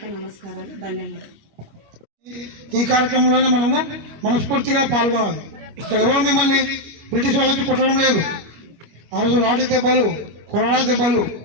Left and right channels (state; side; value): late; left; 25 ms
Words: నమస్కారాలు, ధన్యవాదాలు. ఈ కార్యక్రమంలోనే మనము మనస్ఫూర్తిగా పాల్గొనాలి. ఇక్కడ ఎవరు మిమ్మల్ని బ్రిటిష్ వాళ్ళకి కొట్టడం లేదు. ఆ రోజు లాఠీ దెబ్బలు, కొరడా దెబ్బలు,